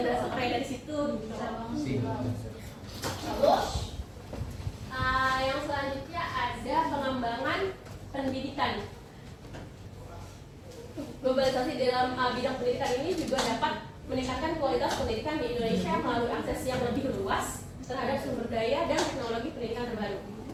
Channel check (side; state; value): both; identical; correlation 1.00